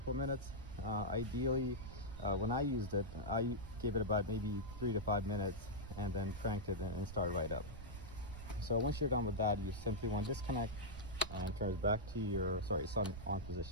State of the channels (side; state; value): right; noise; rumble, 11 dB below the sound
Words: minutes. Ideally, when I used it, I gave it about maybe 3 to 5 minutes and then cranked it and started right up. So once you're done with that, you simply want to disconnect and turn it back to your, sorry, it's on